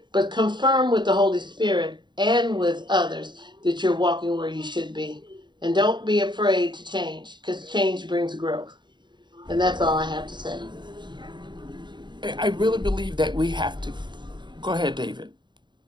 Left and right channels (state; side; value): late; left; 0.22 ms